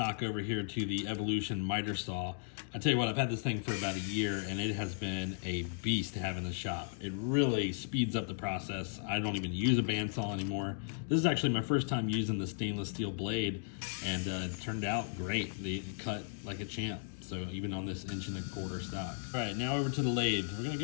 over here to the Evolution miter saw. I tell you what, I've had this thing for about a year and it has been a beast to have in the shop. It really speeds up the process. I don't even use a bandsaw anymore. This is actually my first time using the stainless steel blade, and it turned out great. They cut like a champ. So even on this 1.25 inch stock. All right, now over to the lathe. We're gonna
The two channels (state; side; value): silent; right; digital silence